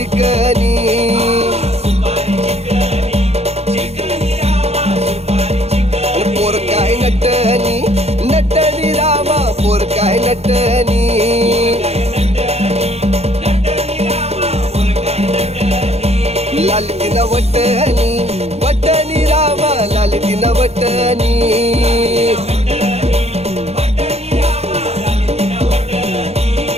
पोर काय नटनी नटनी रामा पोर काय नटनी लाल तिना वटनी वटनी रामा लाल तिना वटनी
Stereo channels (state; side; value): late; left; 0.30 ms